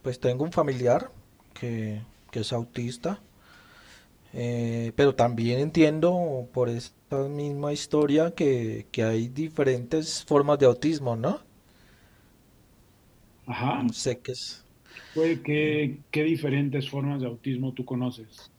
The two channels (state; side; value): identical; both; correlation 1.00